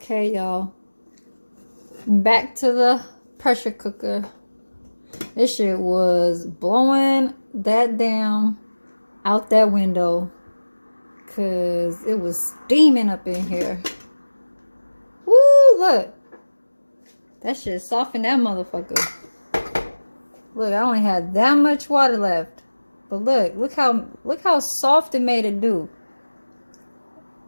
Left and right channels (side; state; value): both; inverted; correlation -1.00